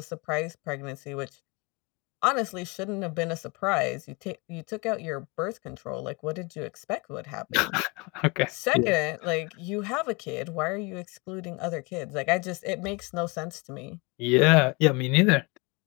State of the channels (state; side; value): quieter; right; 28.0 dB